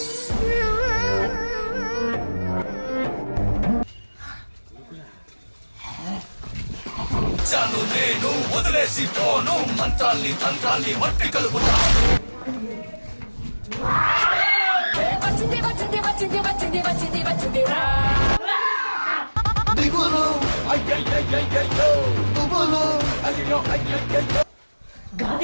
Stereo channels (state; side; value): inverted; both; correlation -1.00